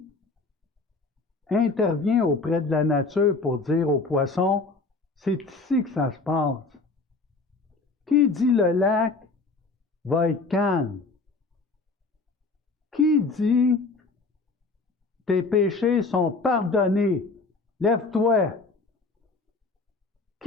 intervient auprès de la nature pour dire aux poissons, c'est ici que ça se passe? Qui dit le lac va être calme? Qui dit tes péchés sont pardonnés? Lève-toi.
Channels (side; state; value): right; quieter; 3.7 dB